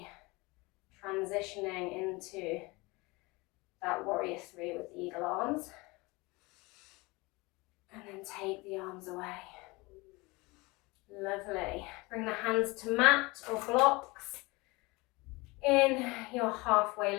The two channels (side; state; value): right; quieter; 24.2 dB